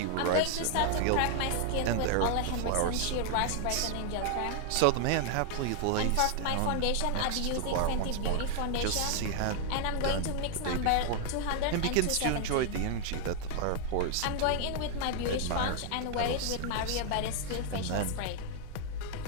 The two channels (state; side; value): different; both; correlation 0.00